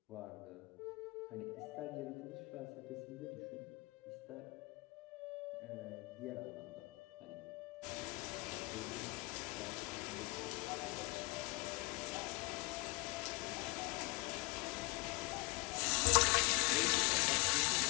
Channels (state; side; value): quieter; right; 27.1 dB